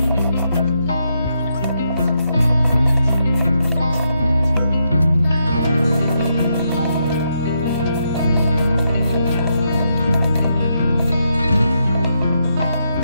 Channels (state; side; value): inverted; both; correlation -0.80